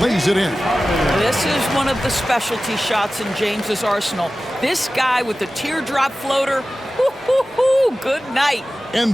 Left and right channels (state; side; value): normal; both; correlation 0.95